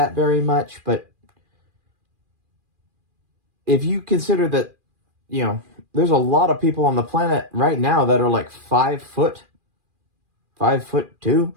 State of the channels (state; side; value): late; left; 2.4 ms